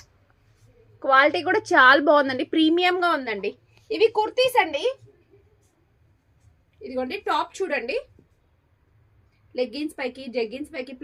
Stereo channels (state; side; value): identical; both; correlation 1.00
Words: క్వాలిటీ కూడా చాలా బాగుందండి, ప్రీమియం గా ఉందండి. ఇవి కుర్తీస్ అండి. ఇదిగోండి టాప్ చూడండి, లెగ్గిన్స్ పైకి జెగ్గిన్స్ పైకి